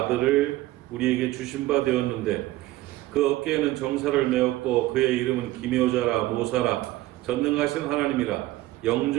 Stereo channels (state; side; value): quieter; left; 17.2 dB